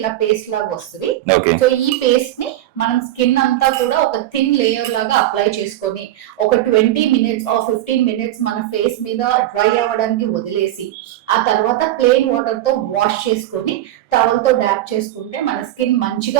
పేస్ట్ లాగా వస్తుంది. సో ఈ పేస్ట్ ని మనం స్కిన్ అంతా కూడా ఒక థిన్ లేయర్ లాగా అప్లై చేసుకొని ఒక 20 మినిట్స్ ఆర్ 15 మినిట్స్ మన ఫేస్ మీద డ్రై అవ్వడానికి వదిలేసి ఆ తర్వాత ప్లెయిన్ వాటర్ తో వాష్ చేసుకొని టవల్ తో డాప్ చేసుకుంటే మన స్కిన్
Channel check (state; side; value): quieter; left; 14.2 dB